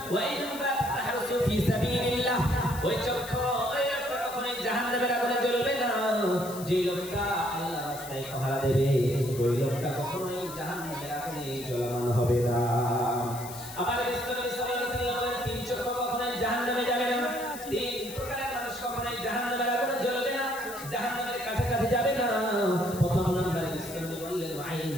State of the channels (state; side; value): noise; left; hiss, 13 dB below the sound